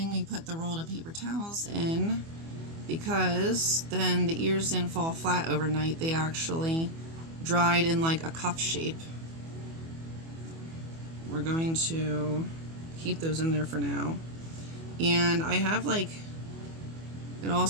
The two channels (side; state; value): left; late; 24 ms